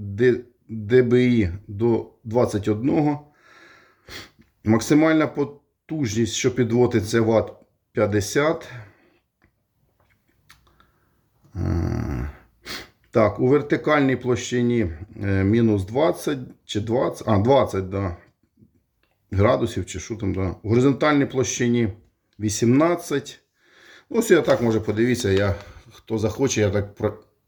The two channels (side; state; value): both; identical; correlation 1.00